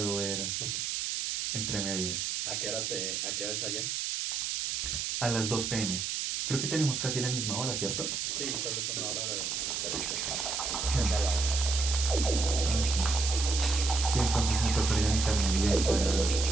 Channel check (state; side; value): noise; right; hiss, 1 dB below the sound